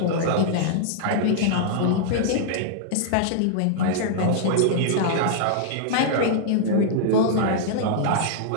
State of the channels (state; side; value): different; both; correlation -0.01